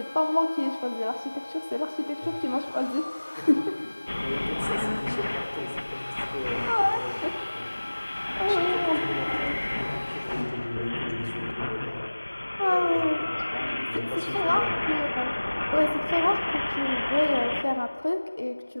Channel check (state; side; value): inverted; both; correlation -1.00